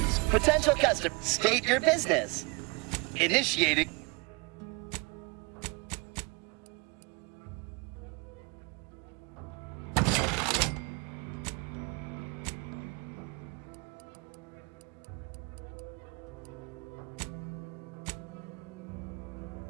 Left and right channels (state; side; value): quieter; left; 28.8 dB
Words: potential customer. State your business. Initiating.